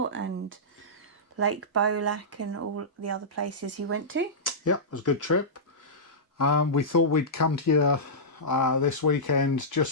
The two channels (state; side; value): normal; both; correlation -0.15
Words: and Lake Bolac and all the other places he went to. Yeah, it was a good trip. We thought we'd come to you this weekend